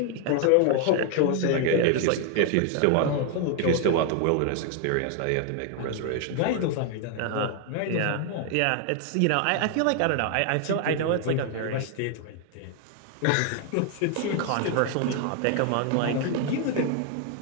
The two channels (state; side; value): different; both; correlation 0.00